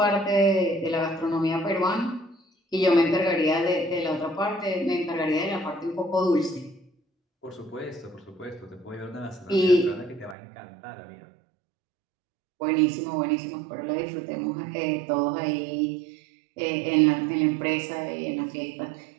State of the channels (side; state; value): left; drops out; at 10.4 s